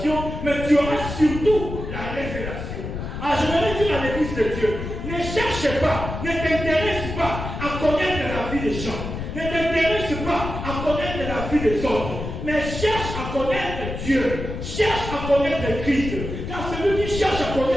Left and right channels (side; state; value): left; noise; rumble, 6 dB below the sound